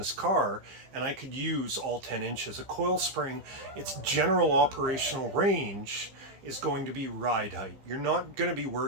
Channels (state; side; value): late; left; 15 ms